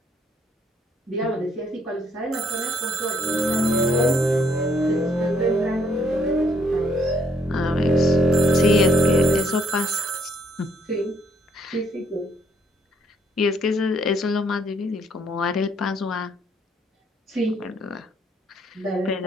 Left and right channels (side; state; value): both; normal; correlation 0.66